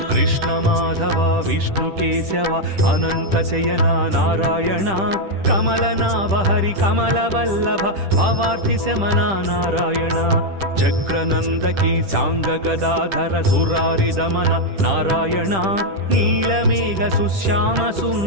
కృష్ణ మాధవ విష్ణు కేశవ అనంత శయన నారాయణ కమలనాభ హరి కమల వల్లభ భవార్తి శమన నారాయణ చక్రనందకి సాంగ గదాధర సురారి దమన నారాయణ నీలమేఘ సుశ్యామ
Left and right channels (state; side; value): late; left; 10 ms